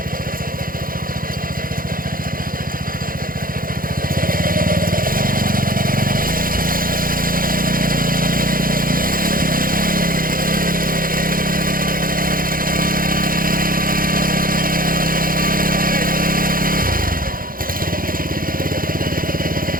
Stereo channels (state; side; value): late; left; 0.41 ms